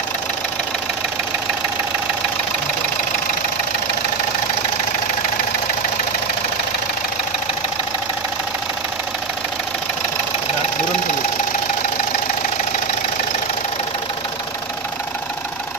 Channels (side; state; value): left; quieter; 4.7 dB